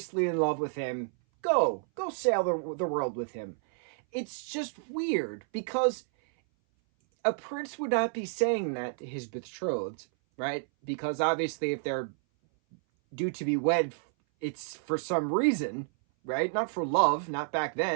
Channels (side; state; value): left; silent; 58 dB below the other